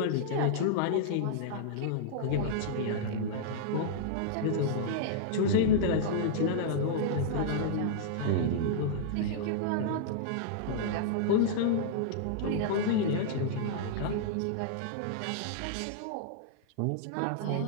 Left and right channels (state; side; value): different; both; correlation -0.02